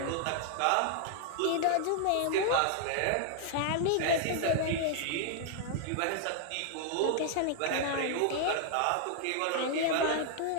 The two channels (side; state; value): both; different; correlation 0.00